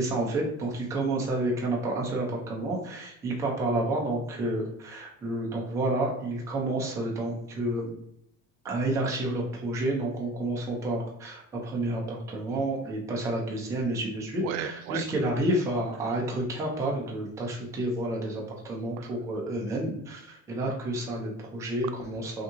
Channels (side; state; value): both; normal; correlation 0.44